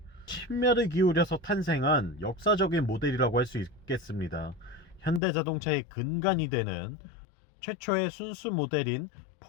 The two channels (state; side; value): drops out; right; at 5.2 s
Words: 심혈을 기울여서 탄생한 역사적인 모델이라고 할 수 있겠습니다. 현대자동차의 근간이 되는 최초의 순수 모델인